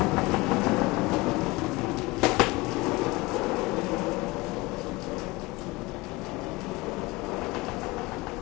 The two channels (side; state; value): right; quieter; 22.3 dB